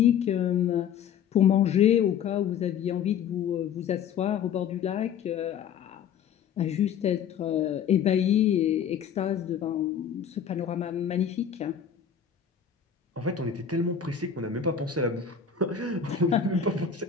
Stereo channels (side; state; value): right; quieter; 7.9 dB